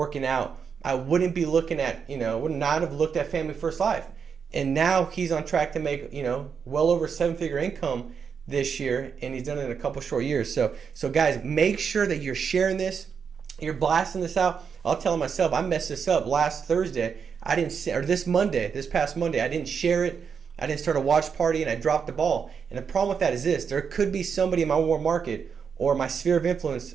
out, I wouldn't be looking at, would not have looked at Family First Life. And now he's on track to make, well over 7-figure income this year, and he's done it in a couple short years. So guys, make sure that you're sharing this, you're blasting this out. I'll tell myself, I messed this up last Thursday. This past Monday, I didn't share it. I didn't start a watch party, and I dropped the ball. And the problem with that is this: there could be somebody in my warm market or my sphere of influence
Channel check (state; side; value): quieter; left; 6.5 dB